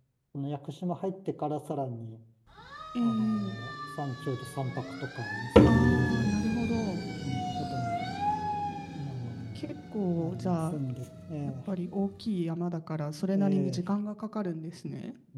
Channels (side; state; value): both; identical; correlation 1.00